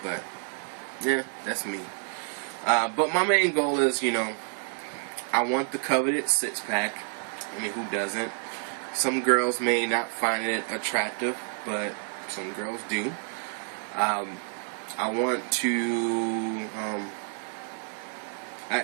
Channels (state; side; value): silent; left; digital silence